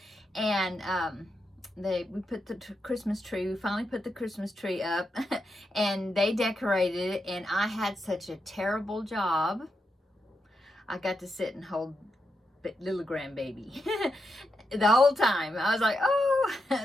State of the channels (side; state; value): both; normal; correlation 0.84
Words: and we put the Christmas tree. We finally put the Christmas tree up, and they decorated it. And I had such a terrible job. I got to sit and hold little grandbaby the whole time. I was like, oh,